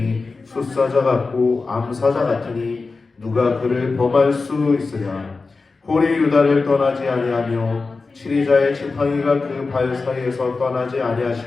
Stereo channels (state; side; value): quieter; right; 4.0 dB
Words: 숫사자 같고 암사자 같으니 누가 그를 범할 수 있으랴. 홀이 유다를 떠나지 아니하며 치리자의 지팡이가 그 발 사이에서 떠나지